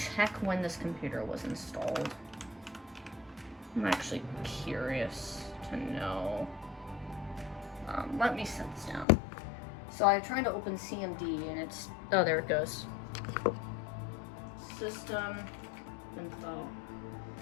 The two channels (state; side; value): drops out; right; at 9.1 s